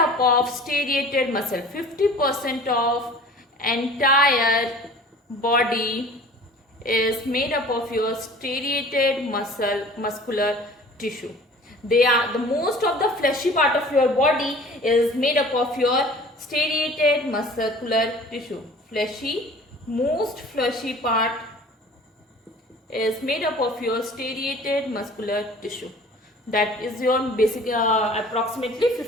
of striated muscle. 50% of entire body is made up of your striated muscular tissue. They are the most of the fleshy part of your body is made up of your striated muscular tissue. Most fleshy part is made up of your striated muscular tissue. That is your basic approximately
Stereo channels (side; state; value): both; normal; correlation 0.46